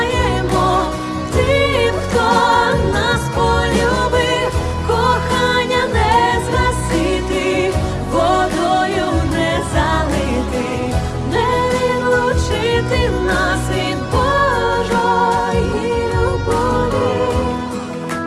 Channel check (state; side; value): identical; both; correlation 1.00